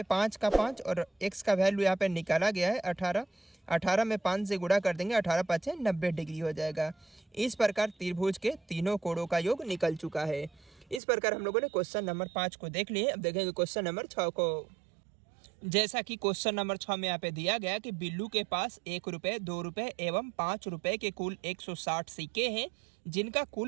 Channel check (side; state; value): left; drops out; at 11.0 s